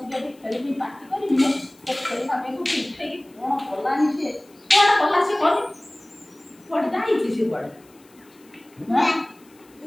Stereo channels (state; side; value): noise; left; hiss, 29 dB below the sound